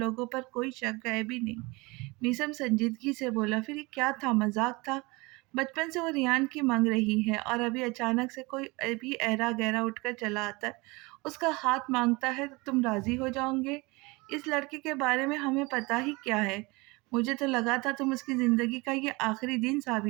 पर कोई शक है भी नहीं। मीसम संजीदगी से बोला, फिर ये क्या था, मजाक था? बचपन से वो रियान की मांग रही है, और अभी अचानक से कोई भी ऐरा गहरा उठकर चला आता है, उसका हाथ मांगता है, तो तुम राजी हो जाओगे? इस लड़के के बारे में हमें पता ही क्या है? मुझे तो लगा था तुम उसकी ज़िंदगी का ये आखिरी दिन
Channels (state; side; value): quieter; left; 24.9 dB